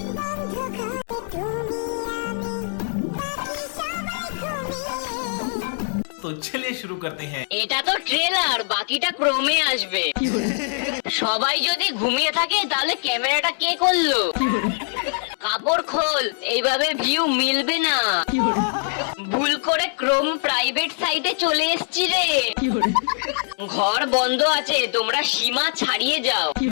तो चलिए शुरू करते हैं। এটা তো ট্রেলার, বাকিটা ক্রমে আসবে। সবাই যদি ঘুমিয়ে থাকে তাহলে ক্যামেরাটা কে করলো? কাপড় খোল, এইভাবে ভিউ মিলবে না। ভুল করে ক্রোম প্রাইভেট সাইটে চলে এসছি রে। ঘর বন্ধ আছে, তোমরা সীমা ছাড়িয়ে যাও।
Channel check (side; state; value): right; silent; 64 dB below the other